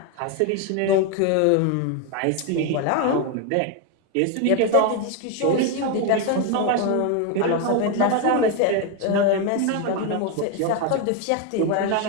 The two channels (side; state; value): both; different; correlation 0.01